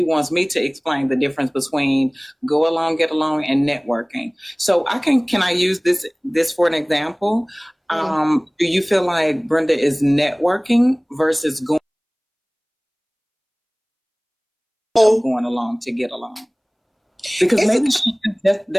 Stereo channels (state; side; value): identical; both; correlation 1.00